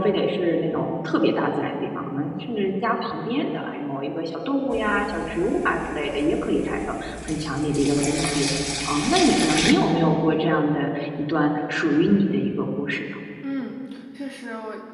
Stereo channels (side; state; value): both; identical; correlation 1.00